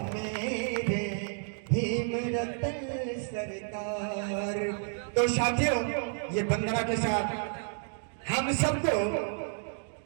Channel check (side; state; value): left; silent; 57 dB below the other